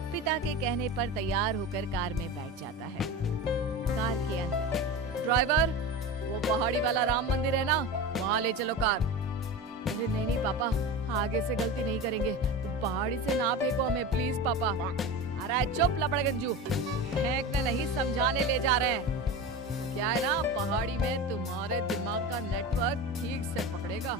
पिता के कहने पर तैयार होकर कार में बैठ जाता है। कार के अंदर, ड्राइवर, वो पहाड़ी वाला राम मंदिर है ना, वहाँ ले चलो कार। अरे नहीं नहीं पापा, आगे से गलती नहीं करेंगे, पहाड़ी से ना फेंको हमें प्लीज पापा। अरे चुप लपड़गंजू, फेंकने नहीं समझाने ले जा रहे हैं। क्या है ना, पहाड़ी में तुम्हारे दिमाग का नेटवर्क ठीक से पकड़ेगा।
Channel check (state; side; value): normal; both; correlation 0.27